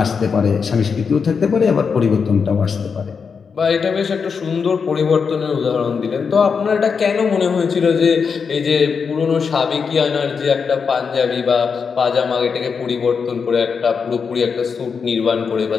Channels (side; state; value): right; quieter; 5.8 dB